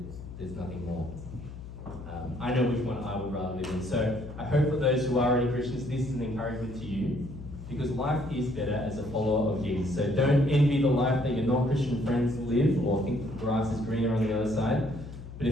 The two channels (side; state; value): left; noise; hum, 12 dB below the sound